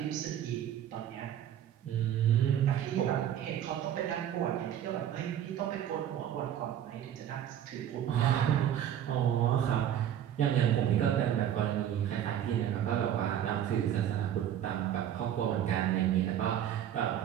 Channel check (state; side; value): quieter; left; 10.4 dB